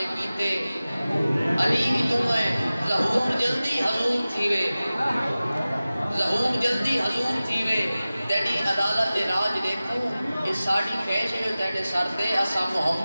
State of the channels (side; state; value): both; inverted; correlation -0.97